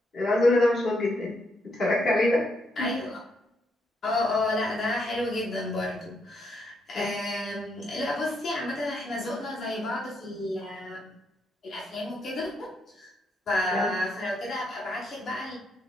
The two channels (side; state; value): both; normal; correlation 0.77